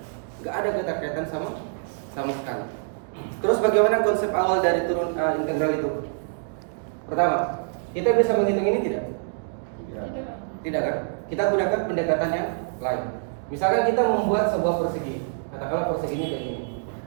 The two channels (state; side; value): silent; left; digital silence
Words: Gak ada keterkaitan sama sekali. Terus bagaimana konsep awal dari integral itu? Pertama, kita bisa menghitung ini tidak? Tidak kan? Kita gunakan pendekatan yang lain. Misalkan kita membuat sebuah persegi. Katakanlah perseginya kayak gini.